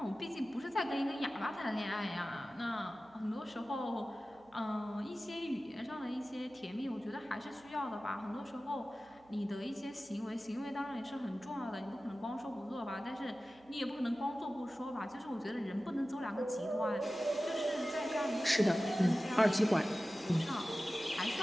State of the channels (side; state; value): right; noise; hum, 29 dB below the sound